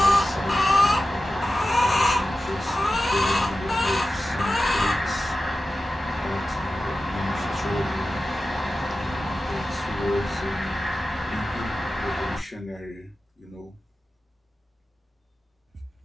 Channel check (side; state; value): both; normal; correlation 0.94